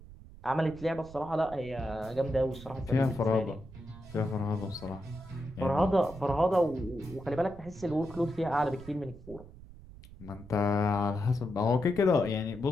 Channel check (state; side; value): noise; right; rumble, 17 dB below the sound